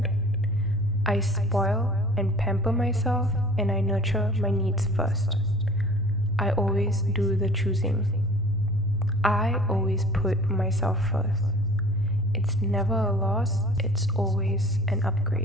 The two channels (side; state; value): left; noise; rumble, 16 dB below the sound